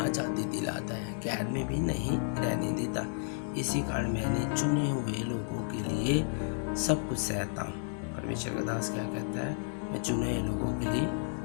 दिलाता है, कैद में भी नहीं रहने देता। इसी कारण मैंने चुने हुए लोगों के लिए सब कुछ सहता हूँ। परमेश्वर का दास क्या कहता है, मैं चुने हुए लोगों के लिए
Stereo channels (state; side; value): silent; right; digital silence